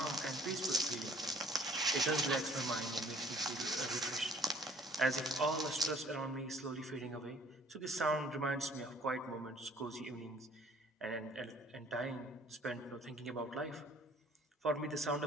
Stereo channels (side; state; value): both; normal; correlation 0.56